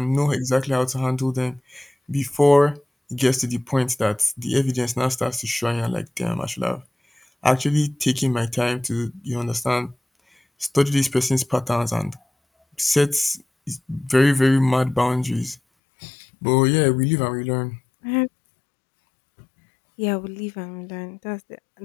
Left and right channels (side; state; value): right; drops out; at 15.6 s